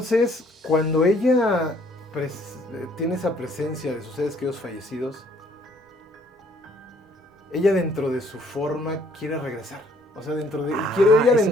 cuando ella tiene esa presencia de sus seres queridos fallecidos, ella dentro de su forma quiere regresar. O sea, quiere ella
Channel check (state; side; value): normal; both; correlation 0.62